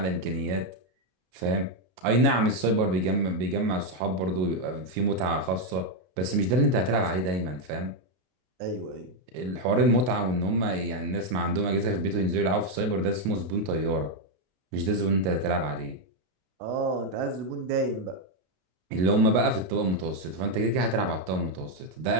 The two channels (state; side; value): late; left; 33 ms